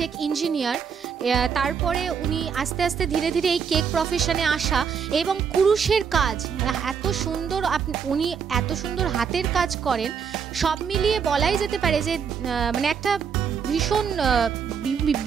ইঞ্জিনিয়ার, তারপরে উনি আস্তে আস্তে ধীরে ধীরে এই কেক প্রফেশনে আসা, এবং কুরুশের কাজ এত সুন্দর, উনি এত সুন্দর হাতের কাজ করেন, সব মিলিয়ে বলাই যেতে পারে যে মানে একটা ভীষণ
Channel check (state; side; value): quieter; left; 6.8 dB